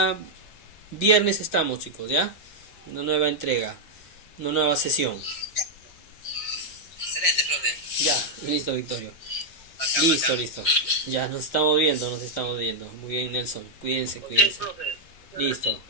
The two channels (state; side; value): late; right; 5.8 ms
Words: viernes estamos, chicos, ¿ya? Una nueva entrega, una nueva sesión. Excelente, profe. Ya, listo, Victorio. Bacán, Listo, bacán. listo. Ya nos estamos viendo, nos estamos viendo. Muy bien, Nelson. Cuídense, Ok, cuídense. profe. Muchas Listo. gracias.